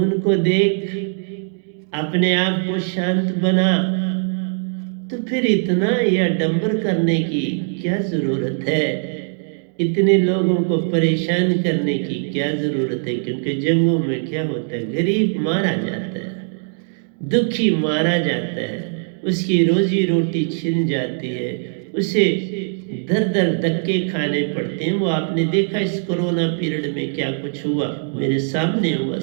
देख अपने आप को शांत बना। तो फिर इतना यह डंबर करने की क्या जरूरत है? इतने लोगों को परेशान करने की क्या जरूरत है? क्योंकि जंगों में क्या होता है, गरीब मारा जाता है, दुखी मारा जाता है, उसकी रोजी रोटी छिन जाती है, उसे दर दर धक्के खाने पड़ते हैं। वो आपने देखा इस कोरोना पीरियड में क्या कुछ हुआ, मेरे सामने हुआ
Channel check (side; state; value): left; silent; 65 dB below the other